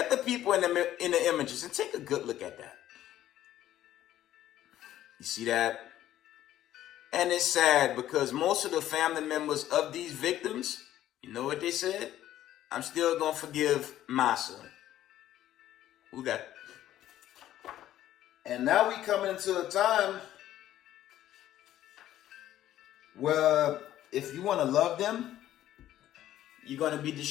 the people in the images and take a good look at that. You see that? And it's sad because most of the family members of these victims, you know what they said? I'm still going to forgive Massacre. Who that? And now we come into a time where if you want to love them, you're going to be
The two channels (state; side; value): quieter; right; 12.8 dB